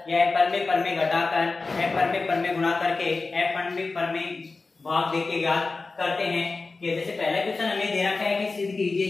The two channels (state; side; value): quieter; right; 3.8 dB